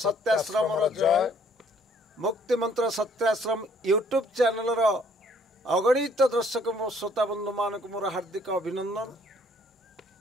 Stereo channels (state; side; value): normal; both; correlation 0.62